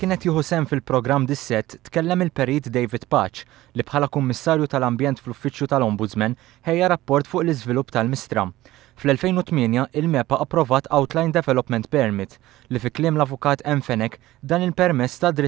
jieħu sehem fil-programm dis-sett, tkellem il-Perit David Patch li bħala Kummissarju tal-Ambjent fl-Uffiċċju tal-Ombudsman ħejja rapport fuq l-iżvilupp tal-Mistra. Fl-2008 il-MEPA approvat Outline Development Permit li fi kliem l-avukat Fenek dan il-permess ta'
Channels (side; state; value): left; quieter; 16.6 dB